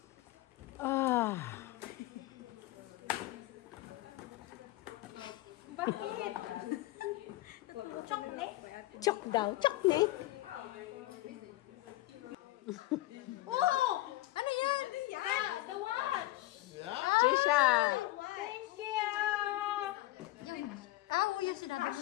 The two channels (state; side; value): quieter; right; 17.8 dB